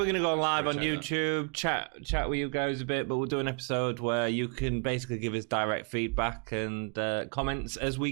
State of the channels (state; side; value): quieter; left; 35.0 dB